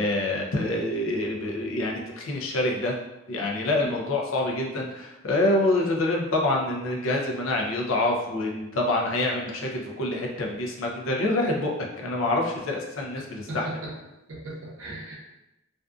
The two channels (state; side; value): normal; both; correlation 0.32